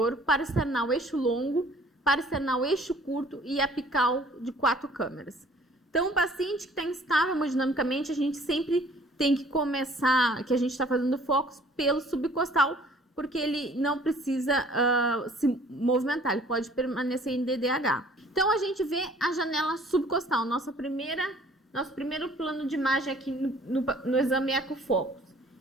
paraesternal eixo longo, paraesternal eixo curto e apical de 4 câmeras. Então, o paciente que está instável hemodinamicamente, a gente sempre tem que começar, que a gente está fazendo focus pelo subcostal, porque ele não precisa se movimentar, ele pode permanecer em DDH. Então, a gente vê a janela subcostal, nosso primeiro plano de imagem aqui no exame EcoFocus.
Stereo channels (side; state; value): both; normal; correlation 0.55